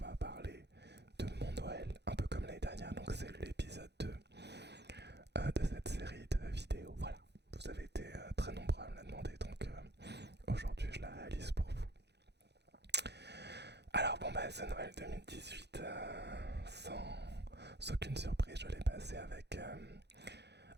parler de mon Noël, un peu comme l'année dernière, donc c'est l'épisode 2 de cette série de vidéos. Voilà, vous avez été très nombreux à me la demander, donc aujourd'hui je la réalise pour vous. Alors bon bah ce Noël 2018, sans aucune surprise, je l'ai passé avec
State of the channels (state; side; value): late; left; 0.49 ms